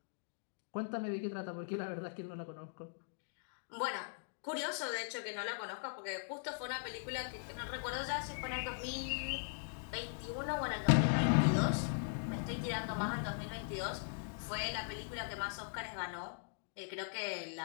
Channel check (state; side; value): silent; right; digital silence